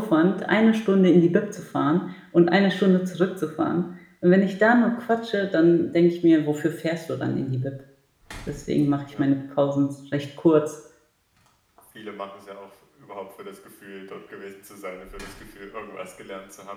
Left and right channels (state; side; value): identical; both; correlation 1.00